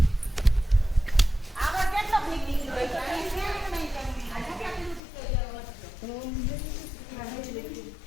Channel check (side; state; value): right; drops out; at 5.0 s